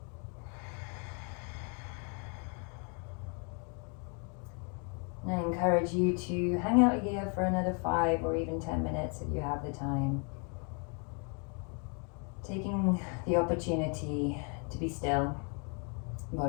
And I encourage you to hang out here for another 5 or even 10 minutes if you have the time. Taking the opportunity to be still,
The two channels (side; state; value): right; quieter; 37.9 dB